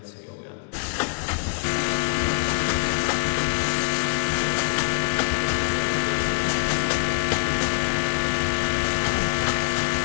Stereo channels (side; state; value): right; silent; digital silence